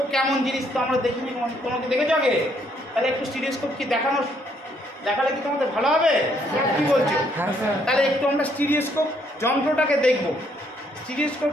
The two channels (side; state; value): both; normal; correlation 0.69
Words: কেমন জিনিস, তো আমরা দেখিনি, কোনো কি দেখেছ আগে? তাহলে একটু স্টিরিওস্কোপ কি দেখালে কি তোমাদের ভালো হবে? কি বলছো? হ্যাঁ স্যার। তাহলে একটু আমরা স্টিরিওস্কোপ যন্ত্রটাকে দেখব। স্টিরিওস্কোপ